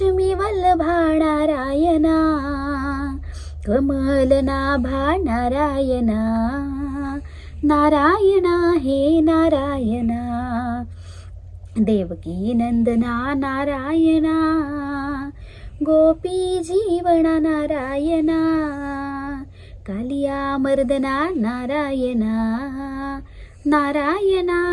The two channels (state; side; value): identical; both; correlation 1.00